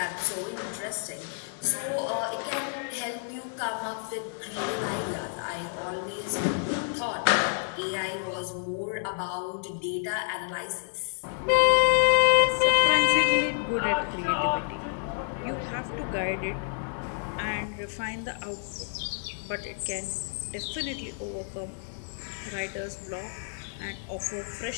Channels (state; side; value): silent; right; digital silence